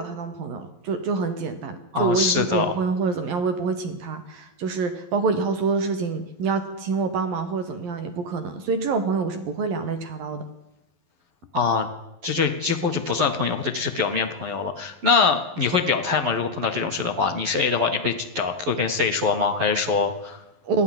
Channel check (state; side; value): late; left; 11 ms